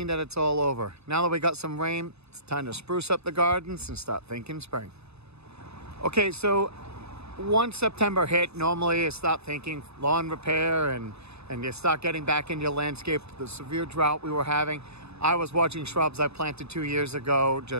that it's all over. Now that we got some rain, it's time to spruce up the gardens and start thinking spring. Okay, so once September hit, normally you start thinking lawn repair and you start getting back into your landscape. The severe drought we were having, I was watching shrubs I planted 2 years ago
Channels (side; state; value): left; late; 0.79 ms